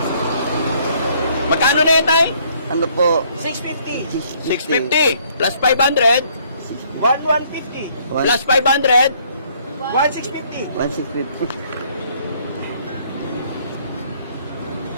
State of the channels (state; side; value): inverted; both; correlation -0.64